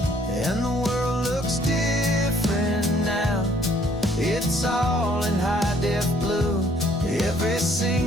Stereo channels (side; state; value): both; normal; correlation 0.62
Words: And the world looks different now, it's all in high-def blue. Every